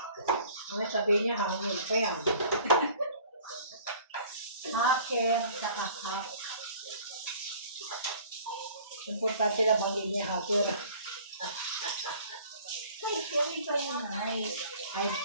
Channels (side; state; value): both; inverted; correlation -0.50